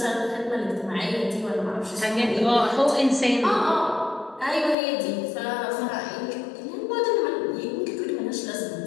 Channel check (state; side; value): drops out; right; at 4.8 s